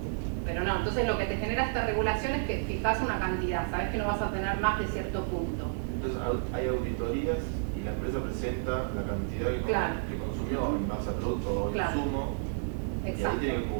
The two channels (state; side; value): silent; left; digital silence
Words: no, entonces lo que te genera esta regulación es que fijas una cantidad, sabes que no vas a tener más de cierto punto. Entonces hay auditorías y la empresa presenta la cantidad que consumió en base a producto o insumo, y ahí tiene que